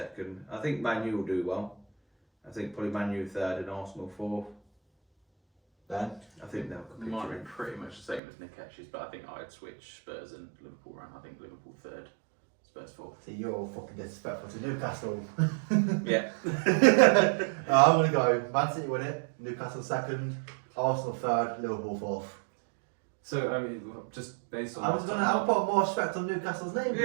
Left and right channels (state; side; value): drops out; left; at 8.2 s